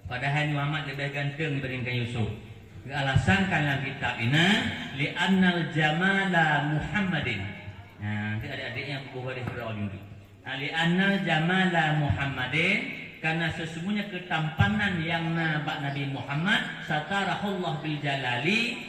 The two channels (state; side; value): identical; both; correlation 1.00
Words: Padahal Muhammad lebih ganteng dibandingkan Yusuf. Alasan dalam kitab ini li'annal jamala Muhammadin. Nanti adik-adiknya buku hadis Fir'aun itu. Li'annal jamala Muhammadin karena sesungguhnya ketampanan yang nampak Nabi Muhammad satarahullah bil jalali